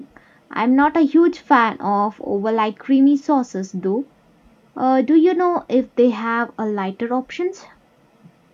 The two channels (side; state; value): both; identical; correlation 1.00